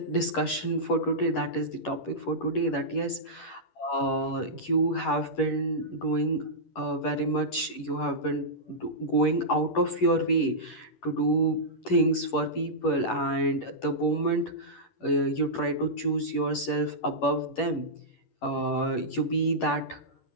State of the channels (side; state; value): right; late; 10 ms